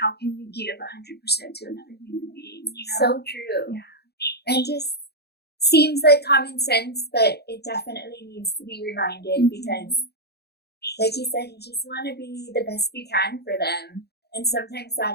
can you give 100% to another human being? So true. Yeah. And just seems like common sense, but it definitely needs to be reminded because, like you said, you just want to be the best you can for them. And sometimes that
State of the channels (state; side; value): late; right; 0.47 ms